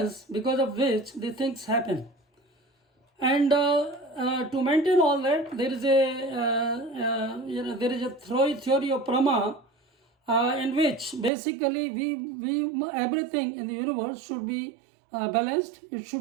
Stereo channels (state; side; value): drops out; left; at 11.3 s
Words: because of which the things happen. And to maintain all that, there is a theory of Brahma in which basically we everything in the universe should be balanced. It